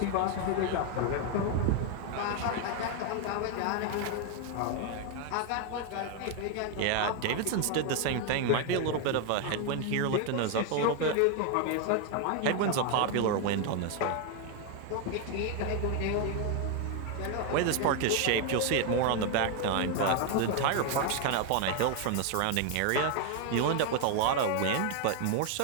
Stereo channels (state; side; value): different; both; correlation 0.01